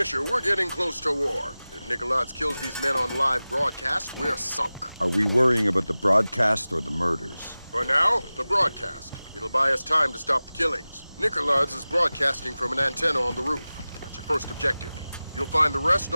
we're getting close to war. If Nikoladze kills these men on live broadcast, we're sunk. Are we worrying about the broadcast or the murders? For now, the broadcast. It'll buy us time to stop the killings. Nikoladze is broadcasting from an antenna on the roof. That's your first objective. You'll find the rest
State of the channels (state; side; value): inverted; both; correlation -0.97